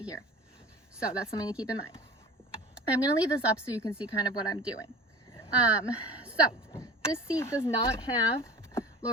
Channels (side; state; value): both; normal; correlation 0.40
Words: here, so that's something to keep in mind. I'm going to leave this up so you can see kind of what I'm doing. So this seat does not have